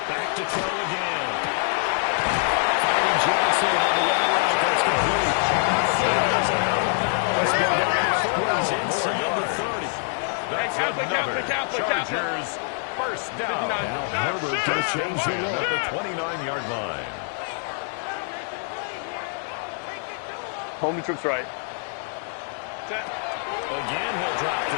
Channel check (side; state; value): right; silent; 55 dB below the other